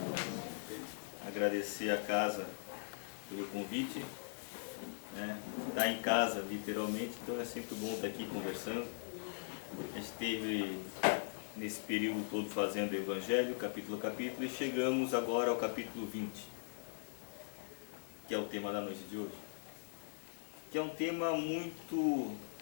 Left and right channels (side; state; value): right; silent; 51 dB below the other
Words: Agradecer a casa pelo convite. Tá em casa, literalmente, então é sempre bom estar aqui conversando. A gente esteve nesse período todo fazendo o Evangelho, capítulo a capítulo, e chegamos agora ao capítulo 20, que é o tema da noite de hoje. Que é um tema muito